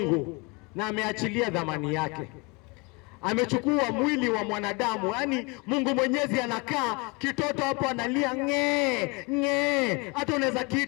na ameachilia dhamani yake. Amechukua mwili wa mwanadamu, yaani Mungu Mwenyezi anakaa, kitoto hapo analia ng'e. Hata unaweza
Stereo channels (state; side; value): quieter; right; 28.7 dB